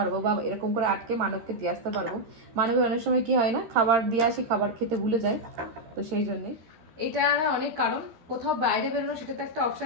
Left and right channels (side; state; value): left; late; 13 ms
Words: বা এরকম করে আটকে মানবকে দিয়ে আসতে পারবো। মানবের অনেক সময় কি হয় না, খাবার দিয়ে আসি, খাবার খেতে ভুলে যায়, তো সেই জন্যে এটা অনেক কারণ। কোথাও বাইরে বেরোনো সেটা তো একটা